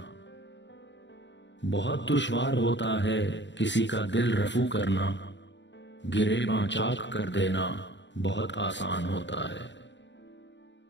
بہت دشوار ہوتا ہے کسی کا دل رفو کرنا، گریباں چاک کر دینا بہت آسان ہوتا ہے۔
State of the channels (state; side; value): late; right; 0.53 ms